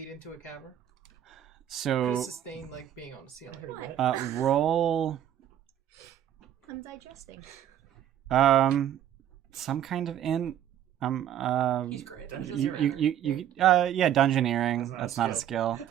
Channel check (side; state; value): left; quieter; 10.9 dB